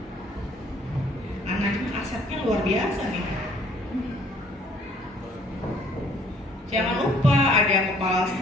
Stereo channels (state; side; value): normal; both; correlation 0.60